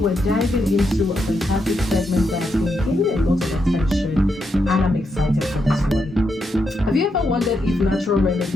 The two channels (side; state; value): both; normal; correlation 0.82